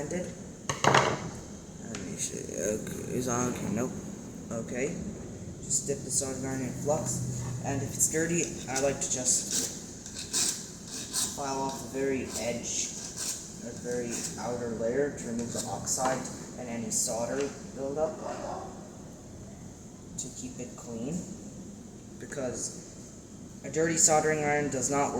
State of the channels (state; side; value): identical; both; correlation 1.00